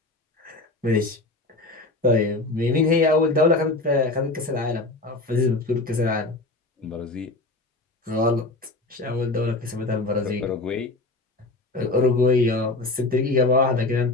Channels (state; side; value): quieter; right; 3.0 dB